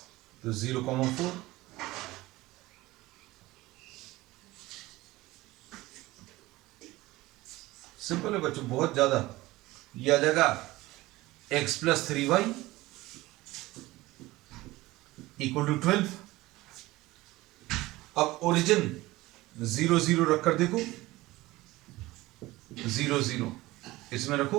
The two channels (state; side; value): quieter; left; 19.0 dB